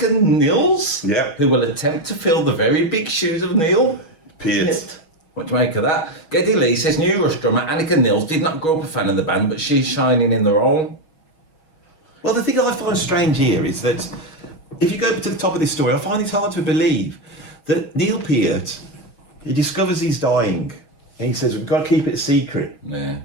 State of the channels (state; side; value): late; right; 6.3 ms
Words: Nils, who will attempt to fill the very big shoes of Neil Peart. What do you make of that? Geddy Lee says new Rush drummer Annika Nils did not grow up a fan of the band, but she's shining in the role. Well, the thing I find strange here is that if you go to the top of this story, I find it hard to believe that Neil Peart, he discovers he's dying, and he says, "We've got to keep it a secret." Yeah.